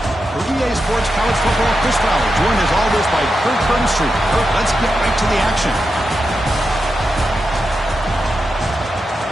For EA Sports College Football, Chris Fowler, joined as always by Kirk Burnstreet. Kirk, let's get right to the action.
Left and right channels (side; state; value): both; normal; correlation 0.88